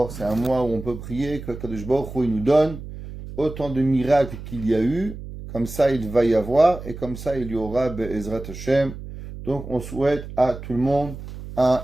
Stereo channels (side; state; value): right; noise; hum, 11 dB below the sound